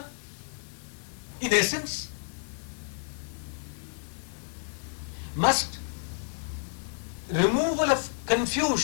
In essence, must removal of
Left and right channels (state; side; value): silent; right; digital silence